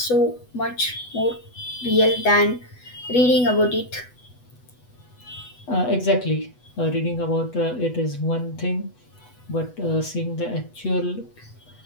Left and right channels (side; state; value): right; late; 8.1 ms